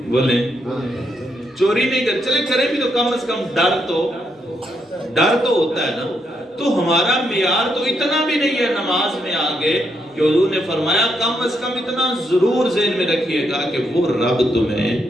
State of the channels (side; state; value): both; normal; correlation 0.78